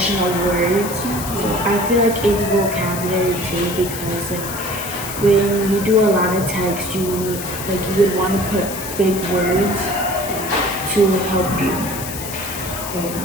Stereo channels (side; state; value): left; noise; hiss, 9 dB below the sound